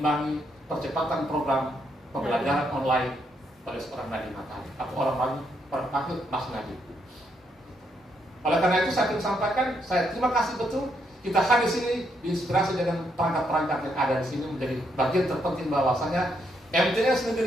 percepatan program pembelajaran online pada seorang Nadiem Makarim atau orang lain panggil Mas Nadiem. Oleh karena itu saya ingin sampaikan, saya terima kasih betul kita hadir di sini diinspirasi dengan perangkat-perangkat yang ada di sini menjadi bagian terpenting bahwasanya MTS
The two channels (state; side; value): normal; both; correlation 0.76